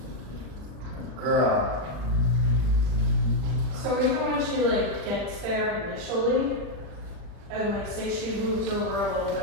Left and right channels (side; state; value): left; late; 40 ms